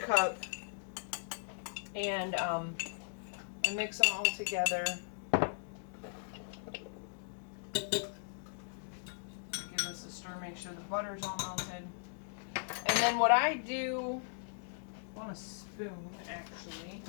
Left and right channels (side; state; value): right; silent; digital silence